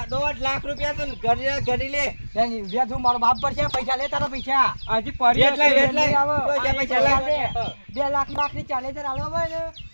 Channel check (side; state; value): both; inverted; correlation -1.00